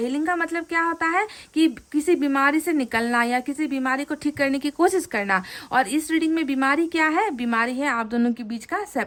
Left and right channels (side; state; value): both; identical; correlation 1.00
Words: हीलिंग का मतलब क्या होता है कि किसी बीमारी से निकलना या किसी बीमारी को ठीक करने की कोशिश करना। और इस रीडिंग में बीमारी क्या है, बीमारी है आप दोनों के बीच का